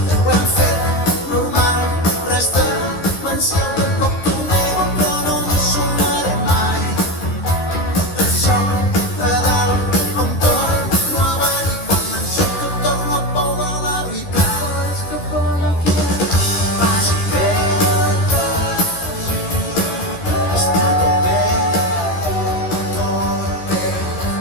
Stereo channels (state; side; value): late; right; 13 ms